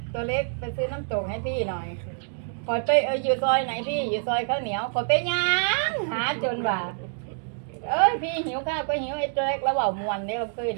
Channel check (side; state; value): left; silent; digital silence